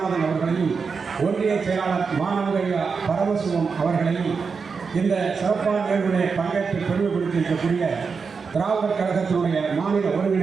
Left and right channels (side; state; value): left; quieter; 5.3 dB